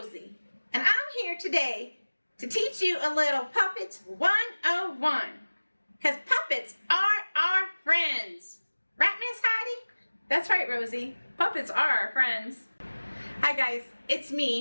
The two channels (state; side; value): inverted; both; correlation -1.00